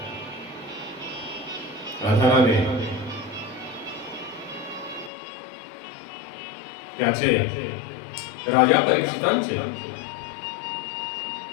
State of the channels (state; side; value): drops out; right; at 5.1 s